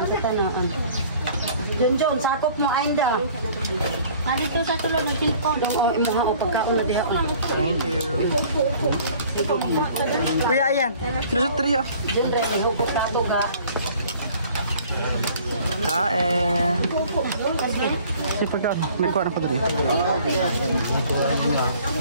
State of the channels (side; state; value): both; inverted; correlation -0.52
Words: John, sakop mo ainda. Dito sa tulad ng tilpon. Oo, imuha o pagkaon na diha. Thank you. Kuya, ayan. Nasa trio. Diyan rin, ihupot ka ito ga. Kain. Si pagkaon, may kuha na ko dito.